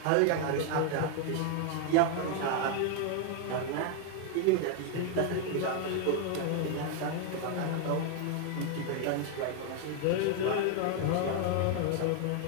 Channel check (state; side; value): different; both; correlation 0.01